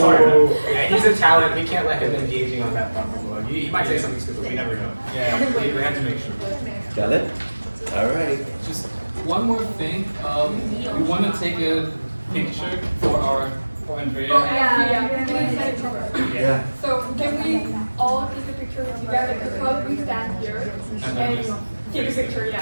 Yeah, he's a talent. We can't let him engaging on that platform. He might say something stupid. We never know. Yeah, we have to make sure. Got it? All right. Just one more thing. We want to take a picture for Andrea. Yeah. So can we all take a picture together? We'll probably stand here and take a picture,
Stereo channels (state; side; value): inverted; both; correlation -1.00